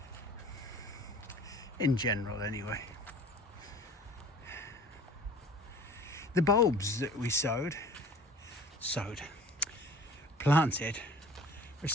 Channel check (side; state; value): both; normal; correlation 0.46